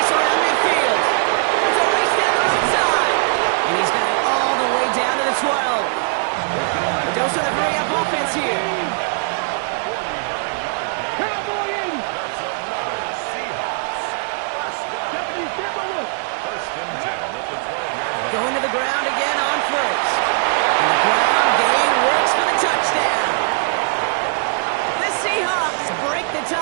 around midfield. It's a race down the right side. And he's got it all the way down to the 12. A dose of the hurry-up offense here. Going to the ground again on first.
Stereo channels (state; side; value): silent; left; 63 dB below the other